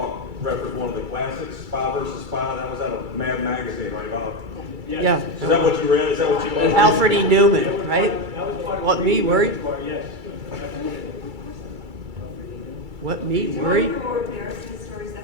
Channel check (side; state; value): left; late; 2.3 ms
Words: reference one of the classics, Spy versus Spy? That was out of Mad Magazine, right, Bob? Yes. Yeah. Is that what you read? Is that what you loved? Alfred E. Newman, right? What me worried? What me worried? More embarrassing stories.